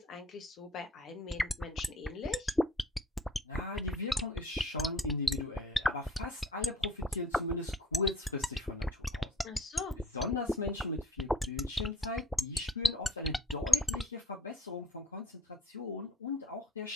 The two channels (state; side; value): normal; both; correlation 0.52